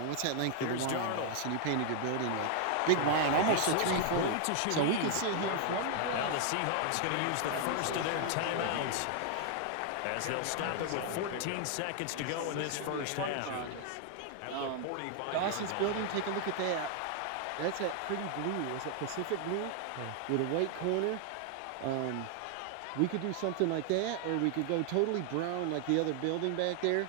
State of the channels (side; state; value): both; different; correlation 0.00